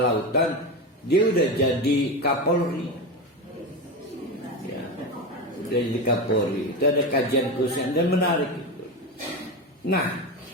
lautan dia udah jadi Kapolri, ya, udah jadi Kapolri. Itu ada kajian khusus dan menarik itu. Nah,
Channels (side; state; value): both; normal; correlation 0.20